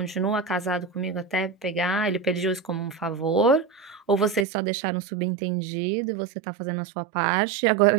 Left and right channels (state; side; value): drops out; left; at 4.5 s